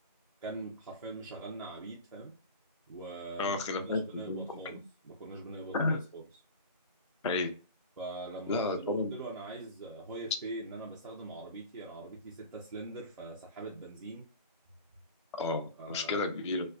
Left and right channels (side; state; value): both; inverted; correlation -0.33